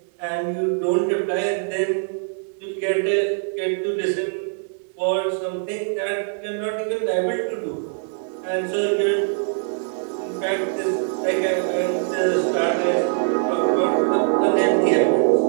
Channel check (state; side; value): silent; left; digital silence